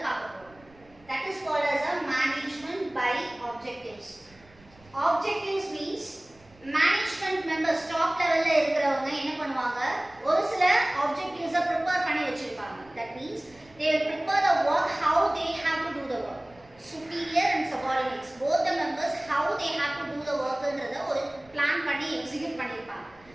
பார்க்க போறோம். That is called as a management by objectives. Objectives means management members top level ல இருக்கிறவங்க என்ன பண்ணுவாங்க, ஒரு சில objectives prepare பண்ணி வச்சிருப்பாங்க. That means they will prepare the work how they have to do the work. Superior and subordinates both the members how they have to do the work ன்றத ஒரு பிளான் பண்ணி எக்ஸிக்யூட் பண்ணிருப்பாங்க.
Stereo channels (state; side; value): noise; right; rumble, 27 dB below the sound